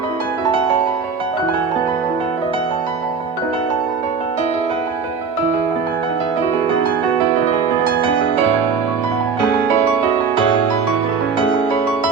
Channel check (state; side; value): quieter; left; 5.4 dB